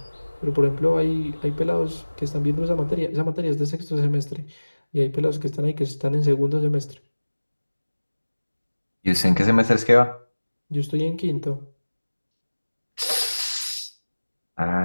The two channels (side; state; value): both; inverted; correlation -1.00